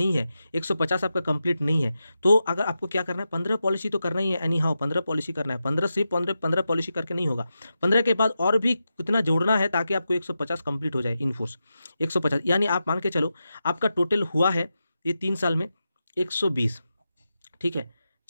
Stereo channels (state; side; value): inverted; both; correlation -0.89